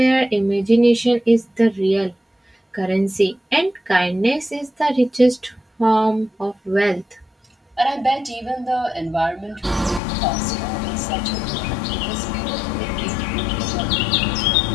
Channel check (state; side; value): drops out; right; at 10.0 s